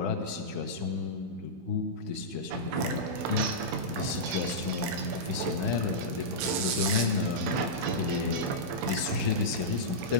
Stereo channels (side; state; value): left; late; 16 ms